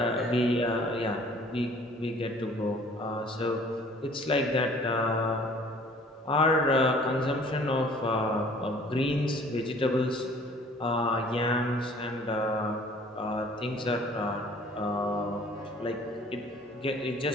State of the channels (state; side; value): normal; both; correlation 0.53